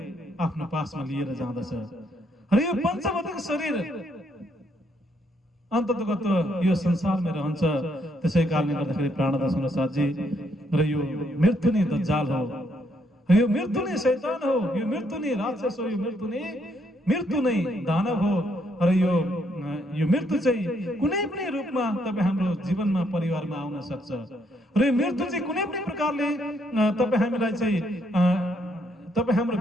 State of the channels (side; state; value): both; normal; correlation 0.73